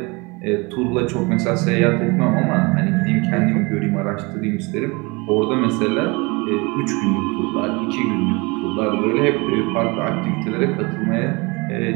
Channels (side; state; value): left; quieter; 26.9 dB